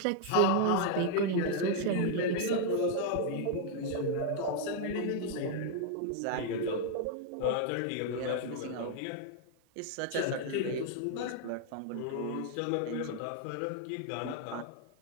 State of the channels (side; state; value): both; different; correlation 0.00